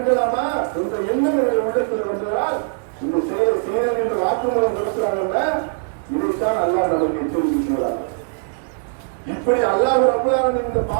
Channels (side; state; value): left; silent; 62 dB below the other